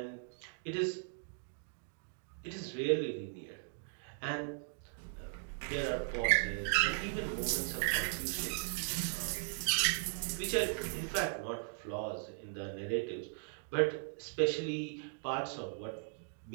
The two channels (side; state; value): left; silent; digital silence